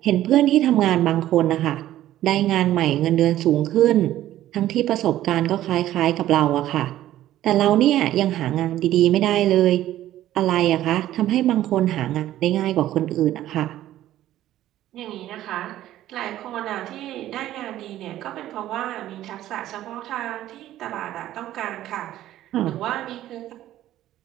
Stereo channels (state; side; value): quieter; left; 13.5 dB